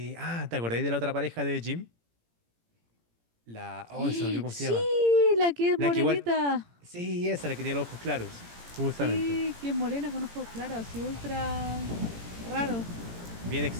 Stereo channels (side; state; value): left; late; 17 ms